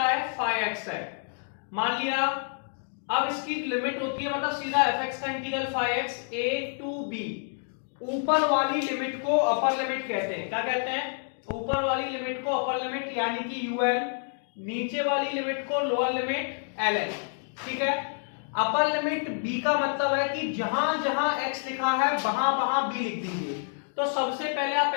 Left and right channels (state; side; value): silent; right; 59 dB below the other